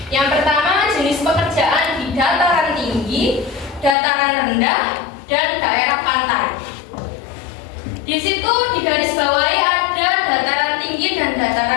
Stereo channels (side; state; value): right; drops out; at 4.0 s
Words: Yang pertama, jenis pekerjaan di dataran tinggi, dataran rendah, dan daerah pantai. Di situ digarisbawahi ada dataran tinggi dan